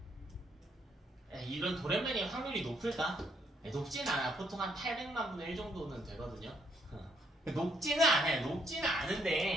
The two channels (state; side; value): normal; both; correlation 0.71